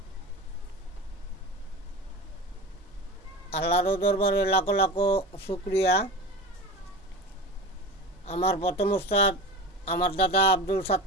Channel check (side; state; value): both; normal; correlation 0.31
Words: আল্লাহর দরবারে লাখো লাখো শুক্রিয়া। আমার প্রথম উস্তাদ আমার দাদা আব্দুল